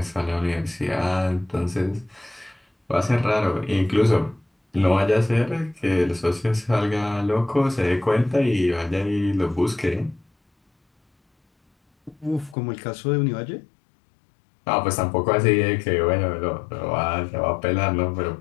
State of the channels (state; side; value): drops out; right; at 12.6 s